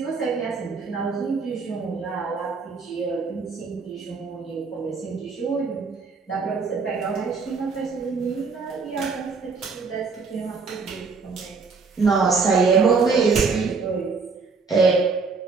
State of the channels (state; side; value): quieter; left; 4.7 dB